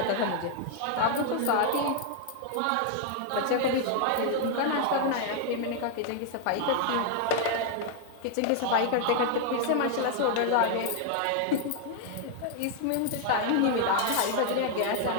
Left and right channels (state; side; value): different; both; correlation 0.00